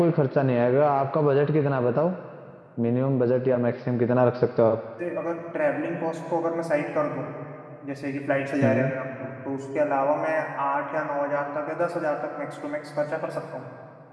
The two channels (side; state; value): both; identical; correlation 1.00